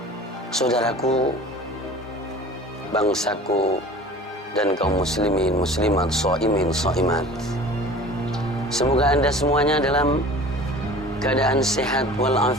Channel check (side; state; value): both; normal; correlation 0.42